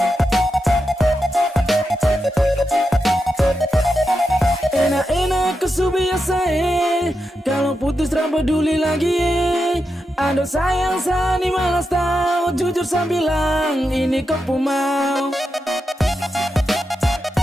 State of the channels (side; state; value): both; normal; correlation 0.87